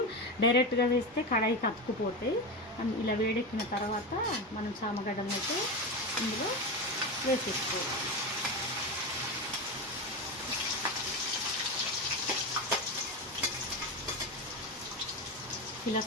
డైరెక్ట్గా వేస్తే కడాయికి అతుక్కుపోతాయి. ఇలా వేడెక్కిన తర్వాత మనం చామగడ్డను అయితే ఇందులో వేసేసుకోవాలి. ఇలా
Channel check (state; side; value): normal; both; correlation 0.18